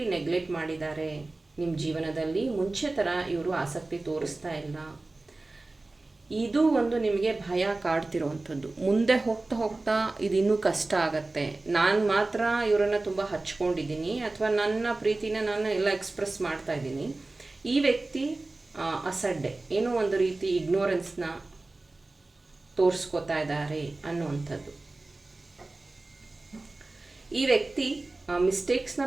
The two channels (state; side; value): quieter; left; 3.1 dB